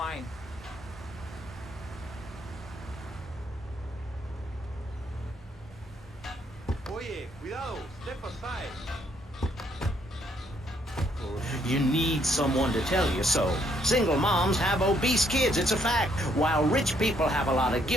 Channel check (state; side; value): normal; both; correlation 0.70